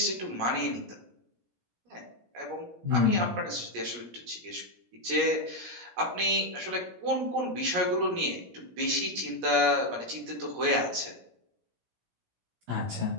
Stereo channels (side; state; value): left; late; 17 ms